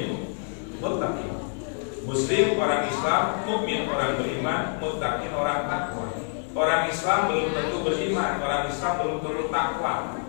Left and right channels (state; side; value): silent; right; 55 dB below the other